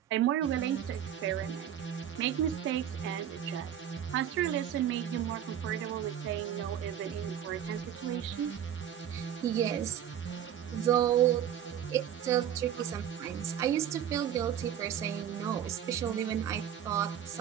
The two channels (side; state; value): left; quieter; 9.9 dB